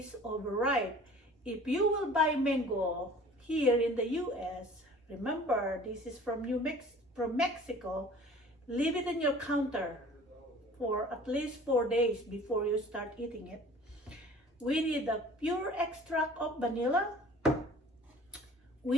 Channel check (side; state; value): both; normal; correlation 0.47